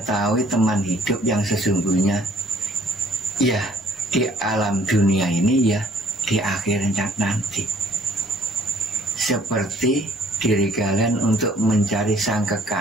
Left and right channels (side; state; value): both; normal; correlation 0.59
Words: teman hidup yang sesungguhnya. Ya, di alam dunia ini, ya di akhirnya nanti. Seperti diri kalian untuk mencari sang